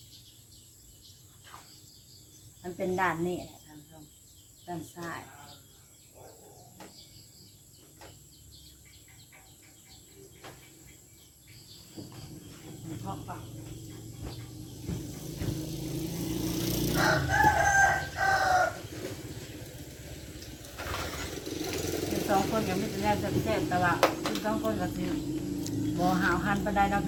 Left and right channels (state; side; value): identical; both; correlation 1.00